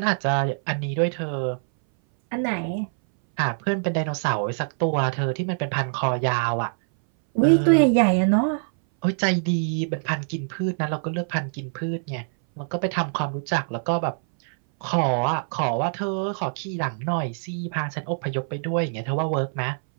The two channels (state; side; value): silent; left; 60 dB below the other